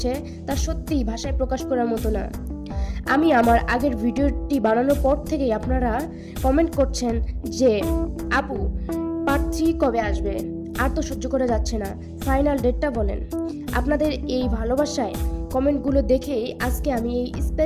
তা সত্যিই ভাষায় প্রকাশ করার মতো না। আমি আমার আগের ভিডিওটি বানানোর পর থেকেই আপনারা কমেন্ট করছেন যে আপু পার্ট 3 কবে আসবে, আর তো সহ্য করা যাচ্ছে না, ফাইনাল ডেটটা বলেন। আপনাদের এই ভালোবাসায় কমেন্টগুলো দেখেই আজকে আমি এই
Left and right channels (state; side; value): identical; both; correlation 1.00